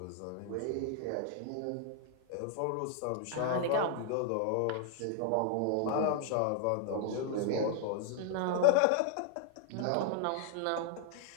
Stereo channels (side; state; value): both; different; correlation 0.00